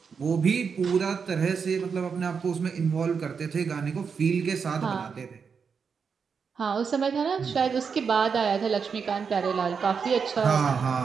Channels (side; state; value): left; quieter; 6.0 dB